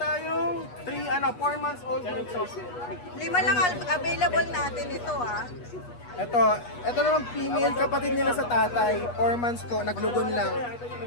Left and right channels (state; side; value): late; right; 8.3 ms